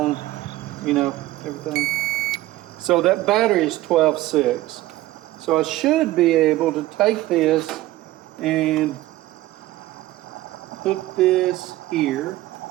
you know, everything. So that battery is 12.6. So I should be able to take this and hook this here.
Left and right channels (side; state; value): left; quieter; 16.7 dB